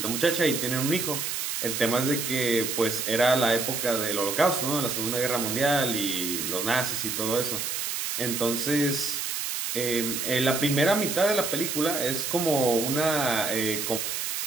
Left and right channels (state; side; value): noise; right; hiss, 2 dB below the sound